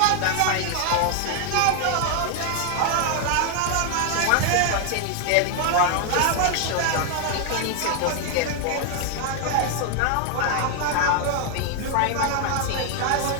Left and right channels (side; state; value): both; different; correlation 0.00